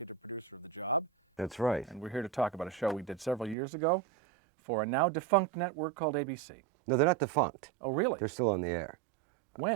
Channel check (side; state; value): left; drops out; at 3.6 s